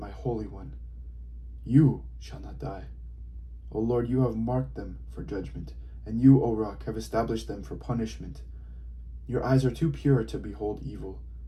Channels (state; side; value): identical; both; correlation 1.00